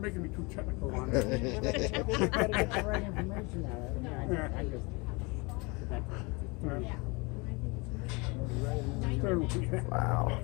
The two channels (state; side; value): quieter; right; 27.6 dB